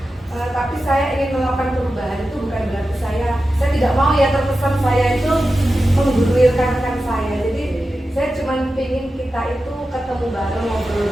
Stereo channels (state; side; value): normal; both; correlation 0.92